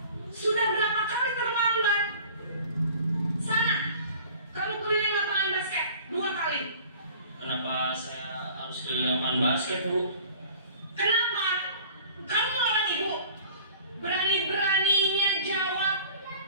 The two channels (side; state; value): both; inverted; correlation -0.46